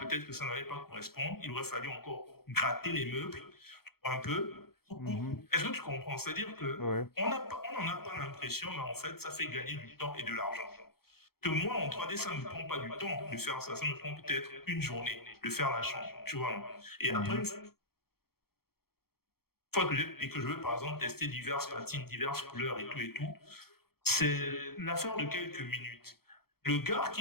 que ça n'allait pas correspondre. Il aurait fallu encore gratter les meubles un peu. Mhm. Est-ce que tu comprends? C'est-à-dire que Ouais. on n'en a pas l'impression, mais en fait, ça fait gagner du temps et de l'argent. Que moi, en 3D, ça ne me prend pas du temps de faire ça. Ça me prend peut-être une journée de faire la chambre, tu vois. Et après, une Mhm. fois que je veux, par exemple, tester diverses patines, diverses couleurs et tout, c'est l'affaire de quelques minutes. Le gars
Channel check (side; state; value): right; late; 0.95 ms